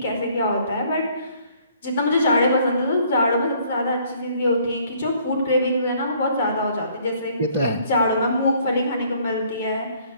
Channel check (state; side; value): inverted; both; correlation -0.61